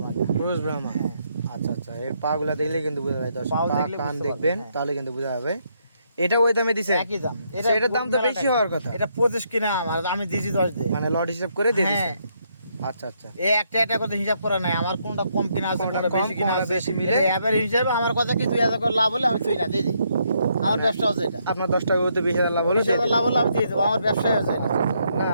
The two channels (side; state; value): both; inverted; correlation -0.74